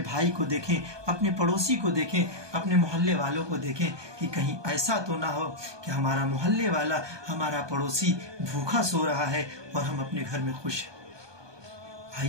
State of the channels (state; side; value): late; left; 1.2 ms